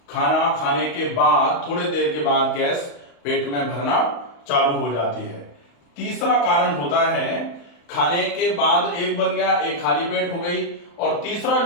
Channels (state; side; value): late; right; 35 ms